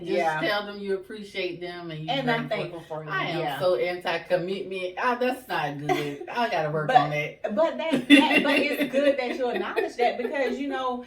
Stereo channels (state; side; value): identical; both; correlation 1.00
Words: just tell them you appreciate them and I'm thankful for them. I am so anti-commitment. That's not good. I gotta work on that. But but it's good that you acknowledge that, because